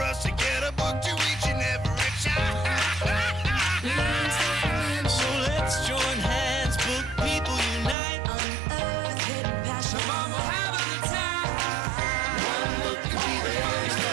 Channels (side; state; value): left; drops out; at 8.0 s